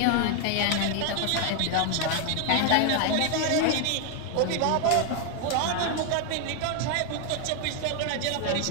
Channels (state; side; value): different; both; correlation 0.00